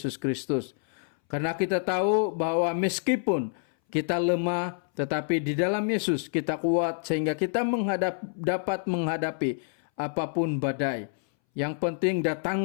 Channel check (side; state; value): right; silent; 60 dB below the other